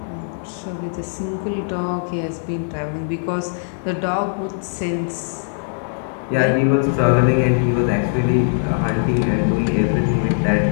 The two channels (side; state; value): right; silent; digital silence